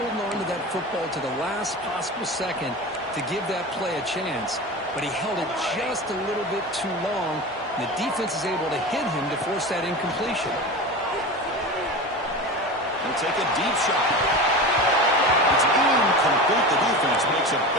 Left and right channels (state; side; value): normal; both; correlation 0.29